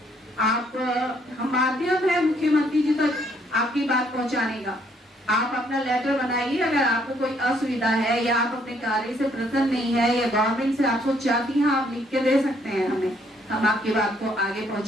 आप हम माध्यम है मुख्यमंत्री जी तक आपकी बात पहुंचाने का। आप अपना लेटर बनाइए। अगर आपको कोई असुविधा है या आप अपने कार्य से प्रसन्न नहीं है या गवर्नमेंट से आप कुछ चाहती हैं, आप लिख के दे सकते हैं हमें। हम आपकी बात को आगे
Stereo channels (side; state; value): both; normal; correlation 0.68